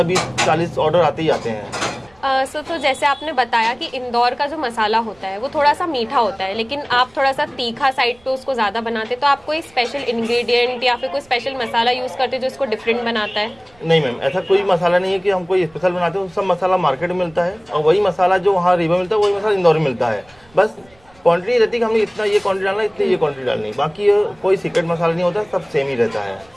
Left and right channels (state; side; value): noise; right; rumble, 30 dB below the sound